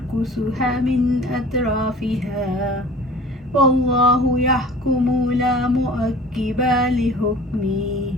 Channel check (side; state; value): both; normal; correlation 0.44